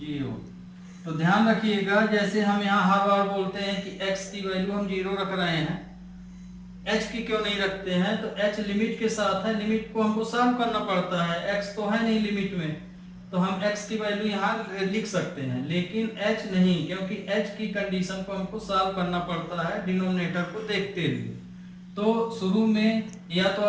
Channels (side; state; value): both; identical; correlation 1.00